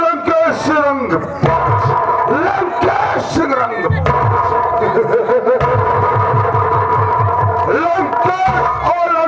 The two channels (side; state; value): both; identical; correlation 1.00